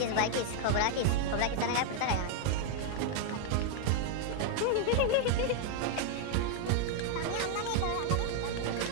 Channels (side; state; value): both; different; correlation 0.00